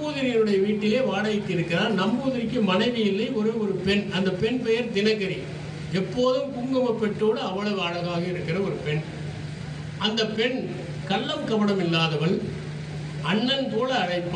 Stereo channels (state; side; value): identical; both; correlation 1.00